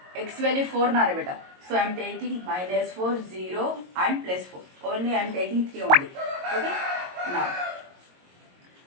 x value 4 na beta. So I am taking minus 4, 0 and plus 4. Only I am taking 3 only. Okay.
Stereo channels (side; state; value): left; late; 22 ms